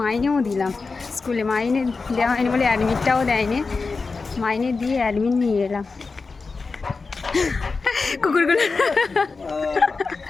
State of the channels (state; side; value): quieter; right; 4.3 dB